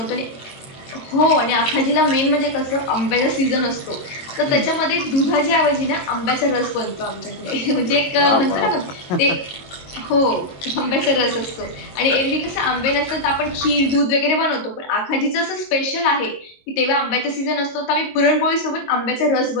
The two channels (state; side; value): late; right; 22 ms